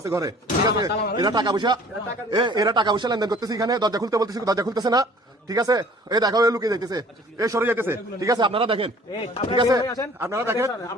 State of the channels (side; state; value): both; normal; correlation 0.51